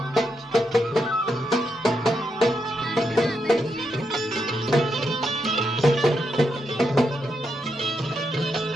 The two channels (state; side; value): normal; both; correlation 0.82